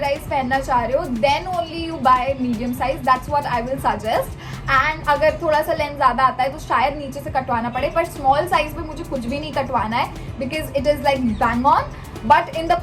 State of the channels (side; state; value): both; identical; correlation 1.00